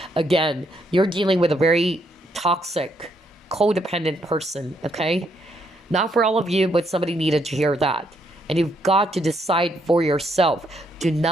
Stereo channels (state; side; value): normal; both; correlation 0.74